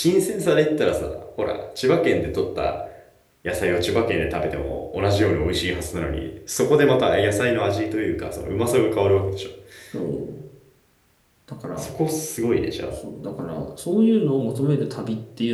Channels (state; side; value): identical; both; correlation 1.00